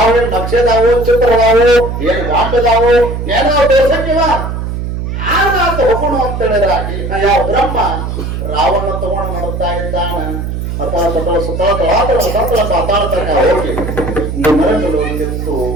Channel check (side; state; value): right; noise; hum, 4 dB below the sound